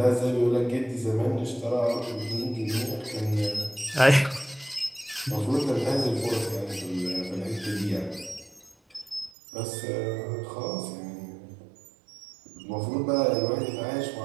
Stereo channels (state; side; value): drops out; left; at 9.3 s